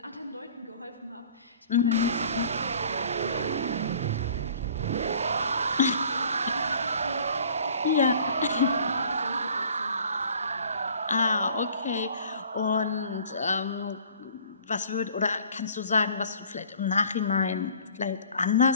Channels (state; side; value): inverted; both; correlation -0.52